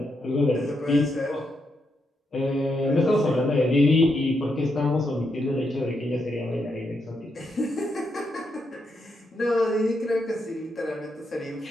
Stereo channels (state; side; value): normal; both; correlation 0.82